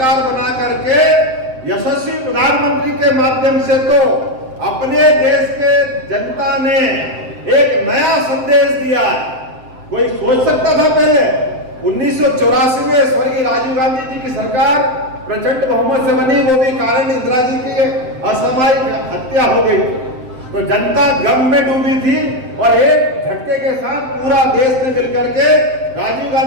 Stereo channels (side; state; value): left; late; 7.7 ms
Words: बना करके यशस्वी प्रधानमंत्री के माध्यम से तो अपने देश के जनता ने एक नया संदेश दिया। कोई सोच सकता था पहले 1984 में स्वर्गीय राजीव गांधी जी की सरकार प्रचंड बहुमत से बनी, वो भी कारण इंदिरा जी की असामयिक हत्या हो गई, तो जनता गम में डूबी थी और एक झटके के साथ पूरा देश ने मिलकर के राजीव